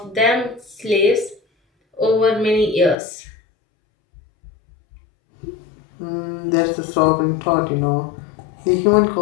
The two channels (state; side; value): drops out; right; at 3.0 s